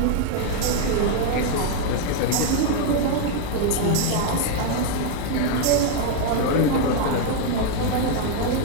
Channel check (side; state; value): both; different; correlation 0.00